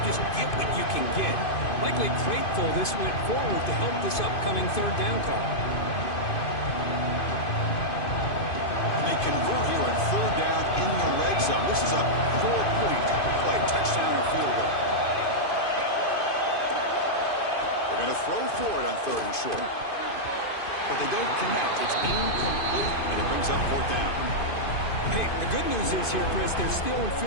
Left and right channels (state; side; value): late; right; 2.5 ms